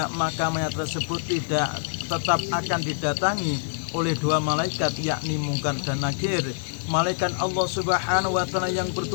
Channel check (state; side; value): silent; right; 61 dB below the other